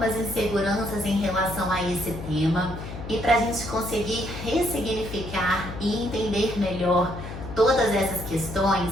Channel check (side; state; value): left; noise; hum, 10 dB below the sound